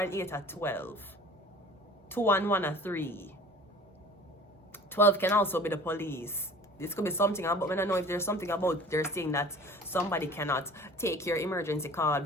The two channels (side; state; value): both; normal; correlation 0.44